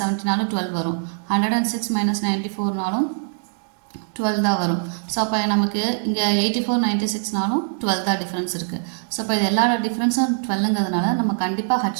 70நாலும் 12 வரும், 106 மைனஸ் 94நாலும் 12 தான் வரும். ஸோ அப்போ நமக்கு இங்கே 84 96நாலும் 12 தான் டிஃப்ரென்ஸ் இருக்குது. ஸோ அப்போ இது எல்லா டிஃப்ரென்ஸும் 12ங்கிறதுனால நம்ம கண்டிப்பாக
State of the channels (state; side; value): silent; left; digital silence